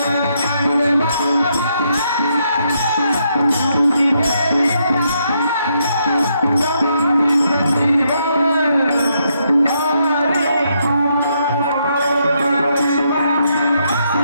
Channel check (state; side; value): inverted; both; correlation -0.77